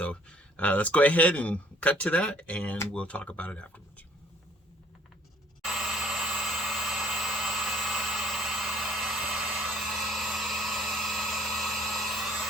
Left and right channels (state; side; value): normal; both; correlation 0.57